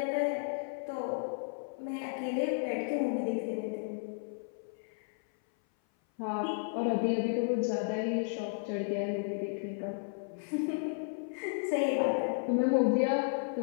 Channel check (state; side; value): silent; right; 56 dB below the other